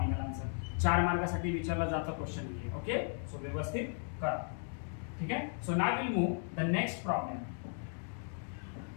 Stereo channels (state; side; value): silent; right; 54 dB below the other